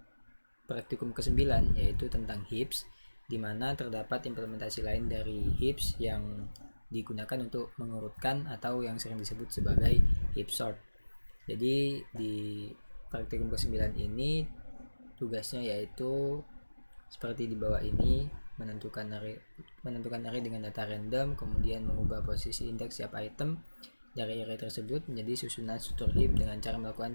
praktikum ke-9, yaitu tentang heaps, di mana terdapat implementasi lain dari heaps yang digunakan untuk mengurutkan atau yang sering disebut sebagai heap sort. Jadi di praktikum ke-9 ini tugasnya yaitu seperti di bawah ini, menentukan array dengan data random, kemudian mengubah posisi indeks setiap item dari array tersebut menjadi susunan struktur heap dengan cara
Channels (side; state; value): both; inverted; correlation -1.00